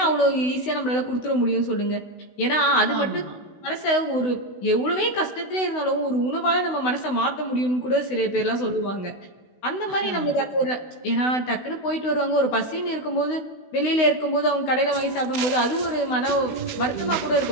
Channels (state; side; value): late; right; 16 ms